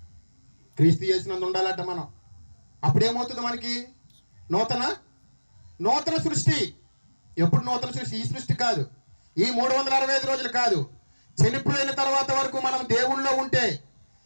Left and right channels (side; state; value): both; inverted; correlation -1.00